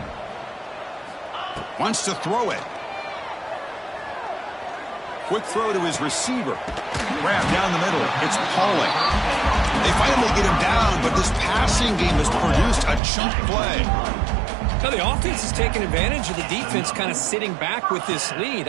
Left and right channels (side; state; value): left; drops out; at 13.0 s